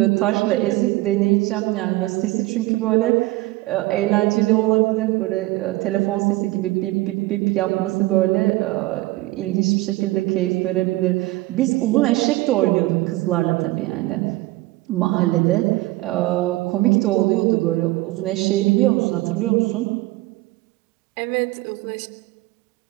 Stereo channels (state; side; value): quieter; left; 19.6 dB